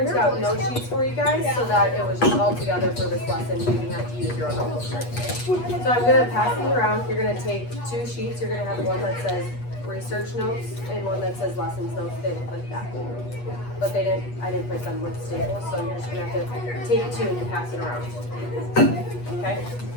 out note sheets for you guys so that it was just all together for this lesson. You didn't have to use your own notebook. So I'm gonna pass these around. You're gonna take 2 sheets. You're gonna have one that says research notes and one that says lessons notes. They look like that. But I didn't print them with staples, so you're just gonna have to take 2 and pass it around. Okay?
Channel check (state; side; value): late; right; 8.3 ms